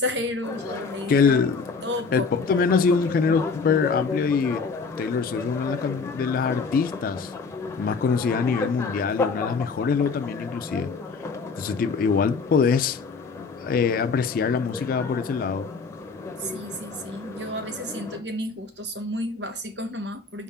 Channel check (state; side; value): quieter; right; 4.8 dB